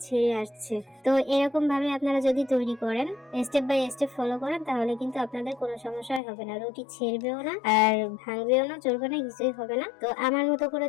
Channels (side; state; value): right; drops out; at 6.2 s